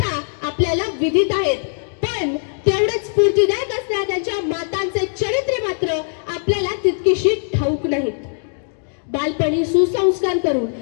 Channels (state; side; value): silent; right; digital silence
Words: आपल्याला विदित आहेत, पण तेवढेच स्फूर्तिदायक असणाऱ्या त्यांच्या मातांचे चरित्रे मात्र आपल्याला तितकीशी ठाऊक नाहीत। बालपणी सुसंस्कार करून